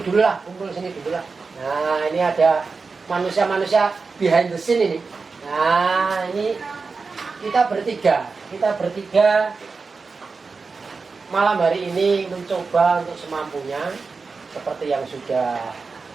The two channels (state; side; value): quieter; left; 4.5 dB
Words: lah, kumpul sini dulu lah. Nah, ini ada manusia-manusia behind the scene ini. Nah, ini kita bertiga malam hari ini mencoba untuk semampunya seperti yang sudah